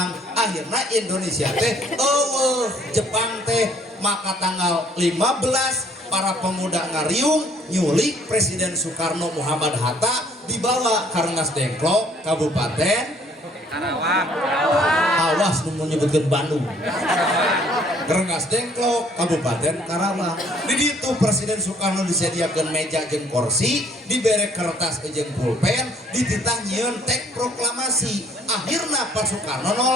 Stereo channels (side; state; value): both; normal; correlation 0.60